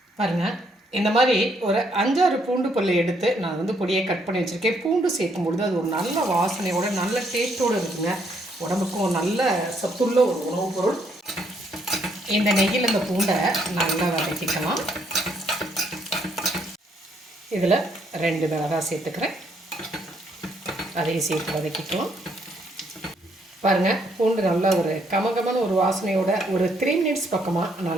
பாருங்கள், இந்த மாதிரி ஒரு 5-6 பூண்டு பல் எடுத்து நான் பொடியை கட் பண்ணி வச்சுருக்கேன். பூண்டு சேர்க்கும் பொழுது அது ஒரு நல்ல வாசனையோட நல்ல டேஸ்ட்டோடு இருக்குங்க. உடம்புக்கும் நல்ல சத்துள்ள ஒரு உணவுப் பொருள். இந்த நெய்யில் இந்த பூண்டை நல்லா வதக்கிக்கலாம். இதில் 2 மிளகாய் சேர்த்துக்கிறேன், அதையும் சேர்த்து வதக்கிக்கலாம். பாருங்கள், பூண்டு நல்லா ஒரு கமகமான ஒரு வாசனையோட ஒரு 3 மினிட்ஸ் பக்கமாக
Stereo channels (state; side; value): normal; both; correlation 0.71